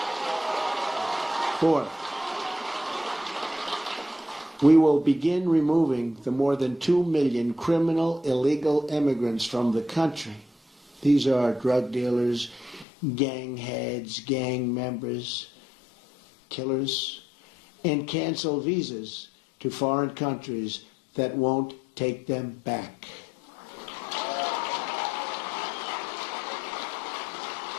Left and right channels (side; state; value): right; drops out; at 12.9 s